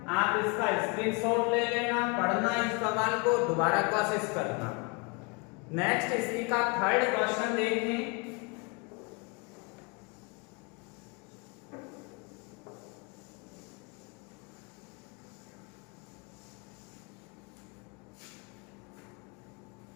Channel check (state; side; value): quieter; right; 30.7 dB